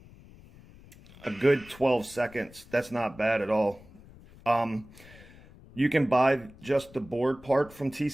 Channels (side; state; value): left; noise; rumble, 22 dB below the sound